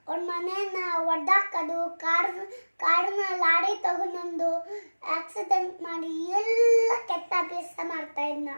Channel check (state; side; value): inverted; both; correlation -1.00